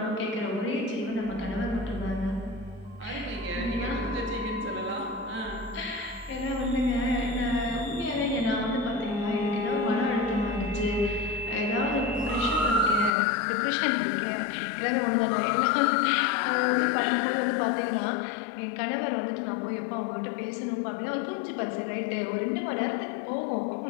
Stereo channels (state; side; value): drops out; right; at 13.1 s